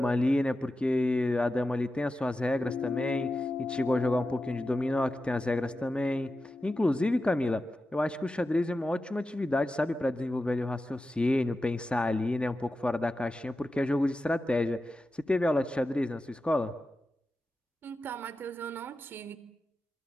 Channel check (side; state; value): both; normal; correlation 0.92